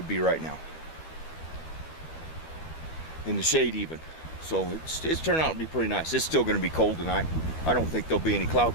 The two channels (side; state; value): right; late; 12 ms